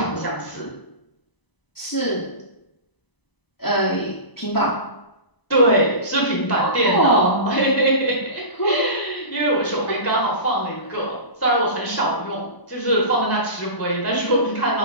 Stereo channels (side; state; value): right; late; 1.0 ms